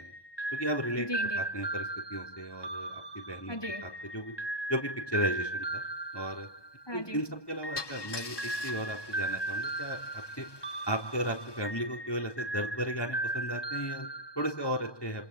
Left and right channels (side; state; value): right; late; 1.2 ms